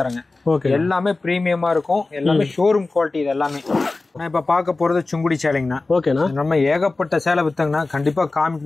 தரேங்க. ஓகே. எல்லாமே பிரீமியமா இருக்கும். எல்லாமே ஷோரூம் குவாலிட்டி. இது எல்லாமே நான் இப்ப பார்க்க போறது சுங்குடி சேலைங்கண்ணா. ஓகேண்ணா. நம்ம ஏகப்பட்ட சேலை வித்தங்கண்ணா. கண்டிப்பா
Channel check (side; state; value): right; quieter; 3.4 dB